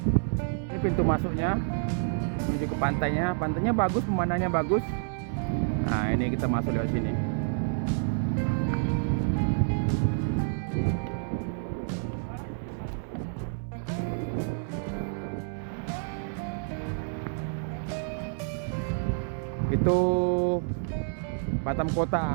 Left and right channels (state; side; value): silent; left; 59 dB below the other